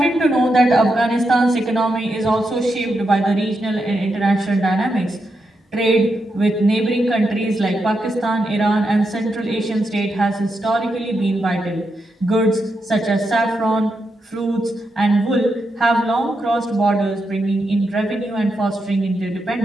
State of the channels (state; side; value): normal; both; correlation 0.84